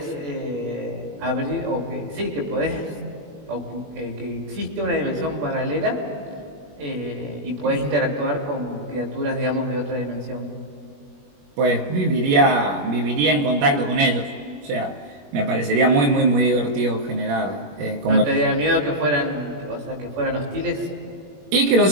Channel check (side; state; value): left; late; 21 ms